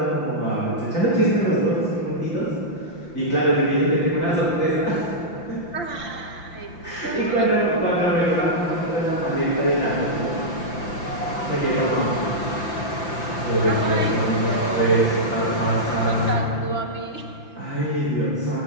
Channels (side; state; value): right; late; 5.9 ms